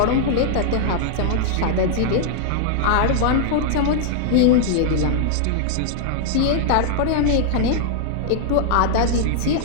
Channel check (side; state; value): both; different; correlation -0.01